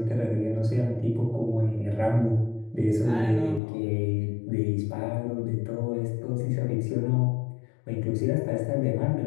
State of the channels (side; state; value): right; drops out; at 3.6 s